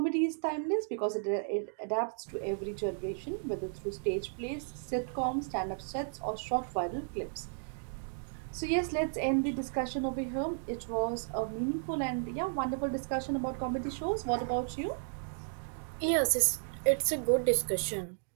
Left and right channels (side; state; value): left; silent; digital silence